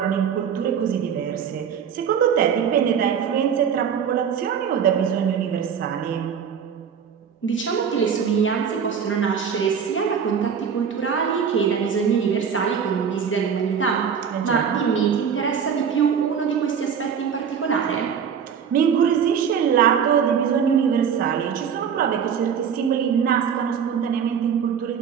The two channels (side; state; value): left; quieter; 7.4 dB